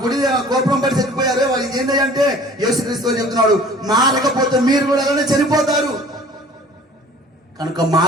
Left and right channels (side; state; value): both; normal; correlation 0.48